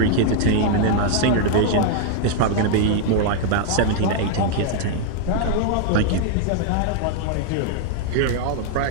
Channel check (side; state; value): both; different; correlation 0.00